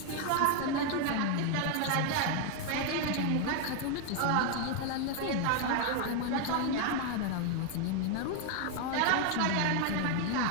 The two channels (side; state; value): both; different; correlation 0.00